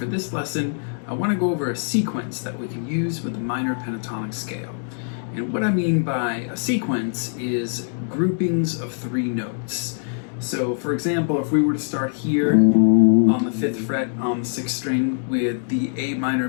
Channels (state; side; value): silent; right; digital silence